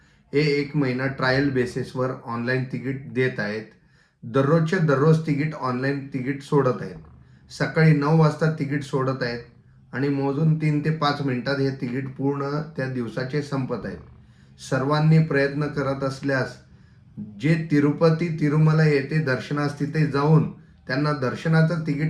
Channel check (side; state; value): both; identical; correlation 1.00